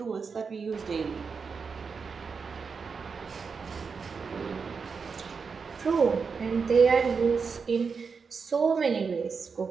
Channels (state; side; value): quieter; left; 5.4 dB